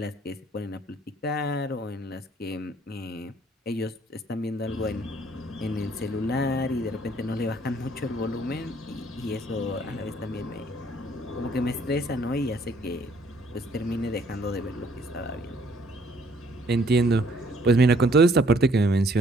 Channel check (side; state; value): both; normal; correlation 0.62